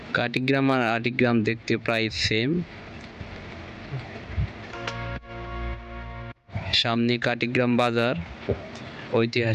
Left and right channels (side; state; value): both; identical; correlation 1.00